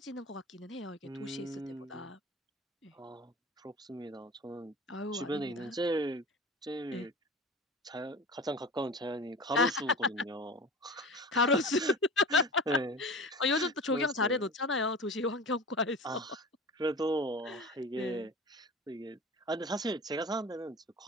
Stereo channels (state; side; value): normal; both; correlation 0.34